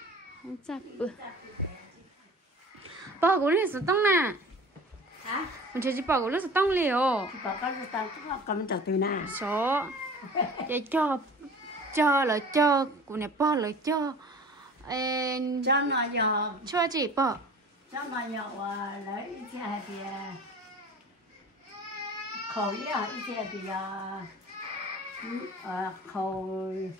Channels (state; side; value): normal; both; correlation 0.42